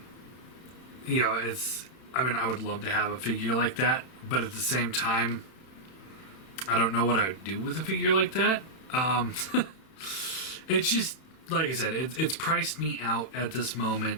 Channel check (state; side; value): late; right; 31 ms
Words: would love to have a figure like that, but at the same time, I don't know what I would do with a figure like that. It's just, like I said, it's priced me out at this